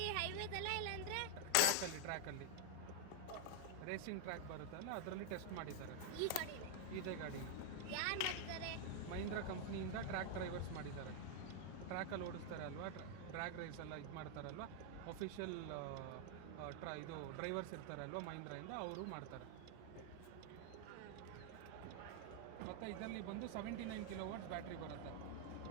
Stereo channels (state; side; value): different; both; correlation 0.00